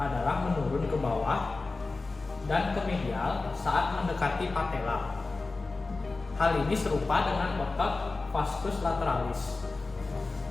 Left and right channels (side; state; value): right; quieter; 3.6 dB